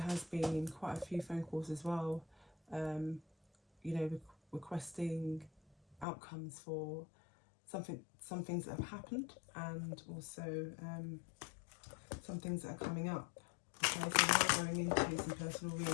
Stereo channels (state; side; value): drops out; right; at 6.1 s